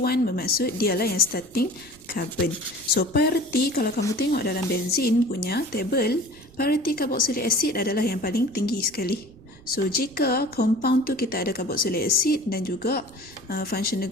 bermaksud dialah yang starting carbon. So, priority kalau kamu tengok dalam benzin punya table, priority carboxylic acid adalah yang paling tinggi sekali. So, jika compound tu kita ada carboxylic acid dan juga functional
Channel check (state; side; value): noise; right; rumble, 24 dB below the sound